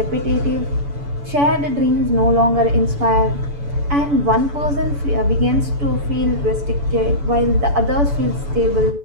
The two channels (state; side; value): late; left; 7.0 ms